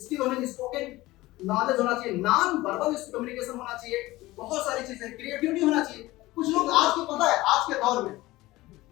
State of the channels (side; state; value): right; quieter; 18.6 dB